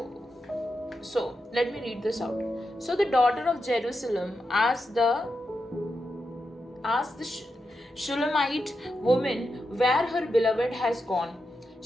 let me read this out. So the daughter of Jerusalem asked the Shulamite woman where her beloved has gone.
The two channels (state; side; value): normal; both; correlation 0.87